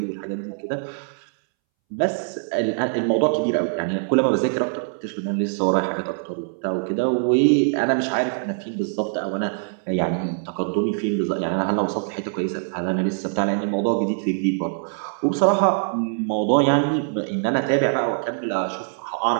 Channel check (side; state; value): left; silent; 63 dB below the other